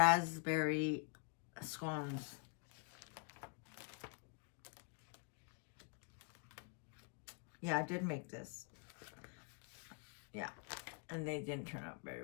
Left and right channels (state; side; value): quieter; right; 35.5 dB